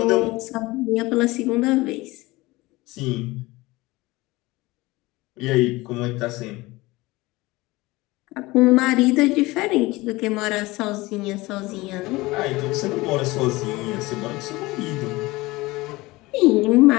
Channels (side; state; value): right; quieter; 21.0 dB